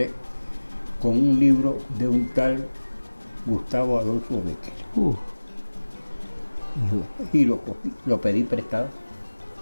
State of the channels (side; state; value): both; inverted; correlation -1.00